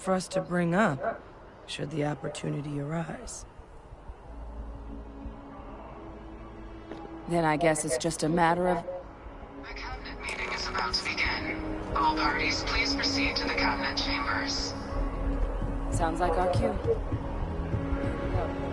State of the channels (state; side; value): identical; both; correlation 1.00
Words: for us to bring up, should the opportunity arise. Then I guess it's just a matter of... The cabinet meeting is about to begin. All parties, please proceed to the cabinet chambers. Sounds like our cue.